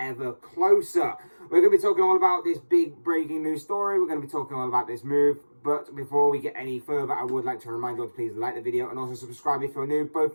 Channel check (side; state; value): both; inverted; correlation -1.00